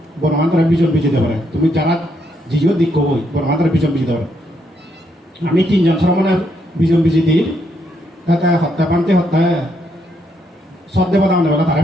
বনবান্ধরা বিজন বিজি দেবে তুমি যারা জিও দিক কবই বনবান্ধরা বিজন বিজি দেবে আমি ৩ জন শ্রমণের বিজন বিজি দিই তাতে হত্যা পান্তে হত্যা সদ্দেব দাম দেবে তারা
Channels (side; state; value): both; normal; correlation 0.76